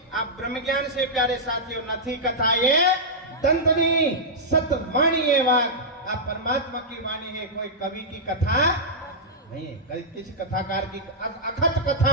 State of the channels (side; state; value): both; normal; correlation -0.11